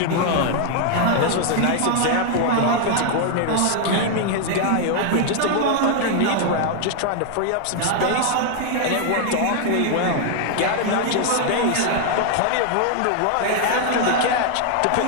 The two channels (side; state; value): both; different; correlation 0.00